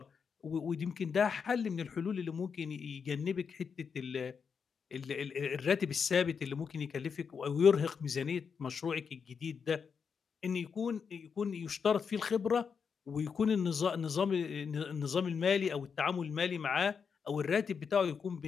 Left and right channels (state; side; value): quieter; right; 6.2 dB